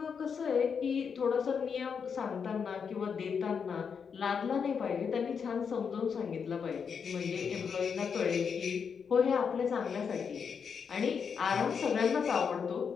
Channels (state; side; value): quieter; right; 6.4 dB